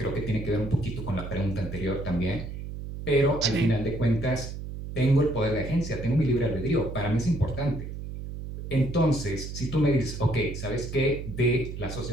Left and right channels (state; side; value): noise; right; hum, 8 dB below the sound